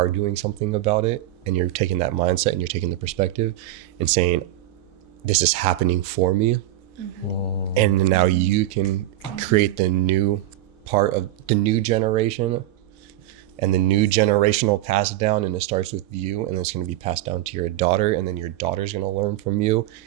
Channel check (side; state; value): left; quieter; 14.3 dB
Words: doing something about it. And you're taking that mindset and you're taking the perspective and saying, this is happening for me. And now you can create the new part of the new generation and the new generational pass down, and it starts with you, and it's going to be passed down to your daughter, and then your daughter's going to learn from you